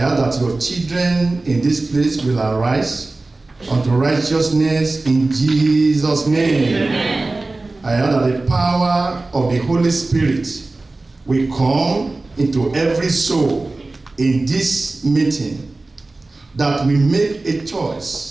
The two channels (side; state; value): left; quieter; 3.2 dB